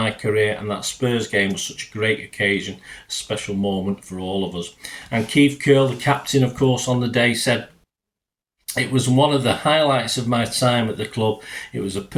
career, and that Spurs game was such a great occasion, a special moment for all of us." And Keith Curl, the captain, of course, on the day said, "It was one of the highlights of my time at the club. It was a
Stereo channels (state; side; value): identical; both; correlation 1.00